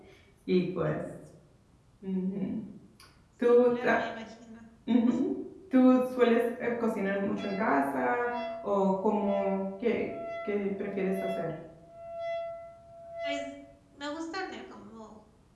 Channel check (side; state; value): both; identical; correlation 1.00